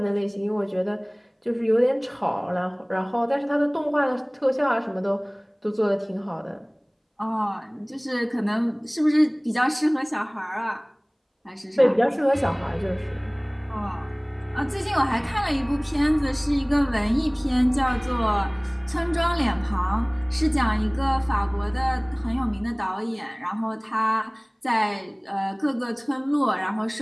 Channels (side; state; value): both; identical; correlation 1.00